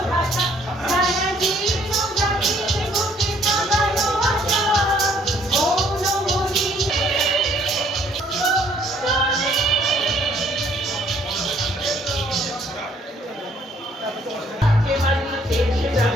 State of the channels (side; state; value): both; normal; correlation 0.63